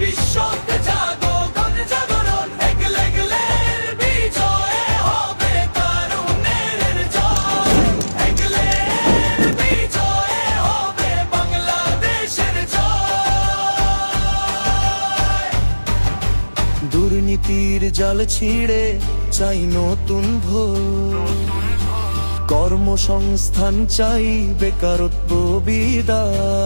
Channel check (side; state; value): both; inverted; correlation -1.00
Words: জাগো গণ জাগরণ, এগলে এগলের বিজয় হবে তরুণের জয়, এগলের বিজয় হবে বাংলাদেশের জয়। দুর্নীতির জাল ছিঁড়ে চাই নতুন ভোর, কর্মসংস্থান চাই বেকারত্ব